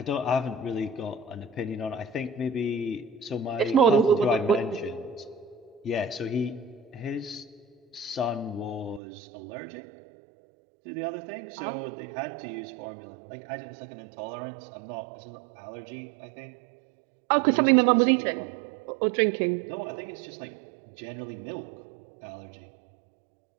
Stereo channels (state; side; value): drops out; left; at 9.0 s